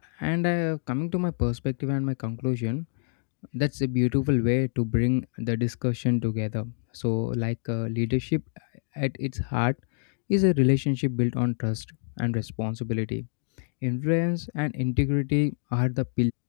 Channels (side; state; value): right; silent; digital silence